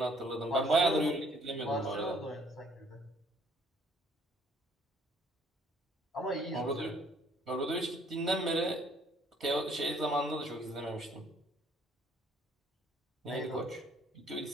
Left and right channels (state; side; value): normal; both; correlation 0.61